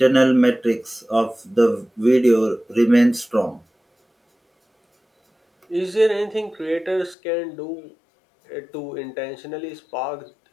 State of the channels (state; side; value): drops out; right; at 7.2 s